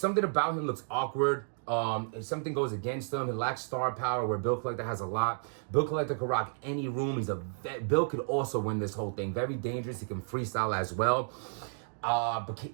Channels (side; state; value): left; silent; digital silence